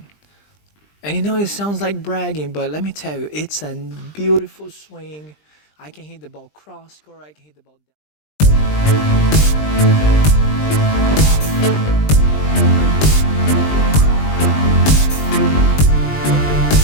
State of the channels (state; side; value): late; right; 20 ms